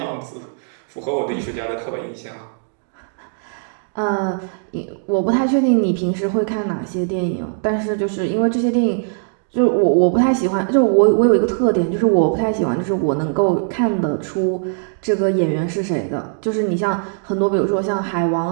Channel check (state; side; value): silent; left; digital silence